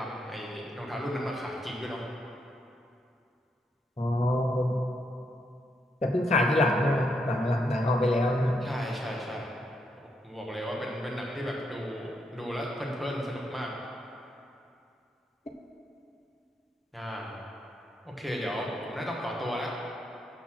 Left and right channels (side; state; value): both; normal; correlation 0.78